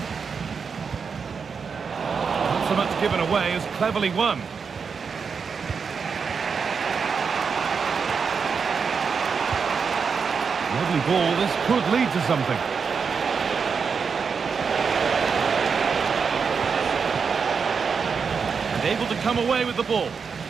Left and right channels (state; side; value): quieter; left; 5.8 dB